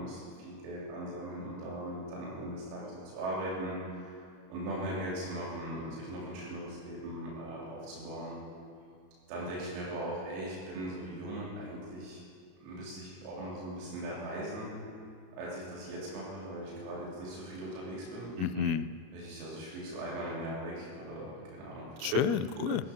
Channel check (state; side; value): late; left; 32 ms